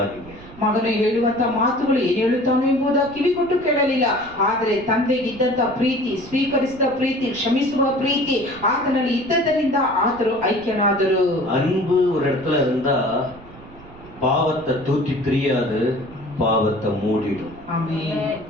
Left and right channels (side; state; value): right; noise; rumble, 20 dB below the sound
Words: ಮಗನು ಹೇಳುವಂತ ಮಾತುಗಳು ಏನು ಹೇಳುತ್ತಾನೋ ಎಂಬುದ ಕಿವಿ ಕೊಟ್ಟು ಕೇಳಲಿಲ್ಲ. ಆದರೆ ತಂದೆಗಿದ್ದಂತ ಪ್ರೀತಿ, ಸ್ವೀಕರಿಸಿದ ಪ್ರೀತಿ, ಕ್ಷಮಿಸುವ ಪ್ರೀತಿ ಆತನಲ್ಲಿ ಇದ್ದದರಿಂದ ಆತರು ಐಕ್ಯನಾದರು. அன்பு ஒரு இடத்துல இருந்தா பாவத்தை தூக்கி தெரியாது, பாவத்தை மூடிடும். ஆமென்.